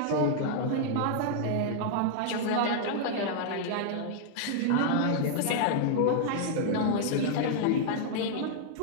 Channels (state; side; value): different; both; correlation -0.01